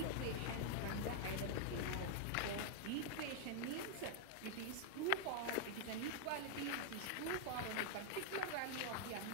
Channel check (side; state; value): both; different; correlation 0.00